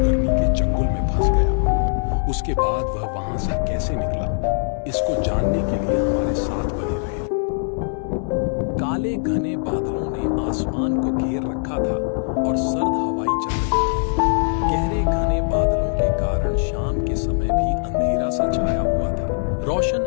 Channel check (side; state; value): right; silent; 65 dB below the other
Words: के चंगुल में फंस गया। उसके बाद वह वहां से कैसे निकला, इसको जानने के लिए हमारे साथ बने रहे। काले घने बादलों ने आसमान को घेर रखा था और सर्द हवाएं चल रही थी। गहरे घने बादलों के कारण शाम के समय भी अंधेरा सा छाया हुआ था। रोशन